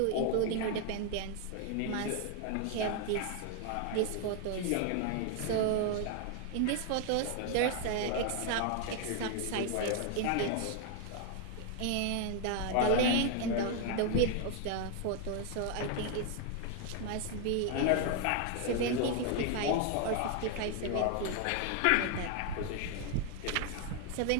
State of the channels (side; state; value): both; different; correlation 0.01